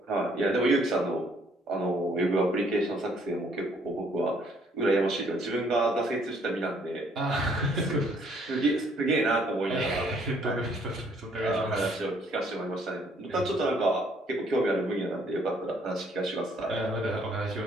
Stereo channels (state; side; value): normal; both; correlation 0.65